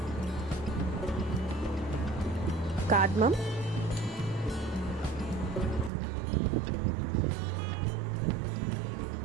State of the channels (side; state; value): left; drops out; at 5.9 s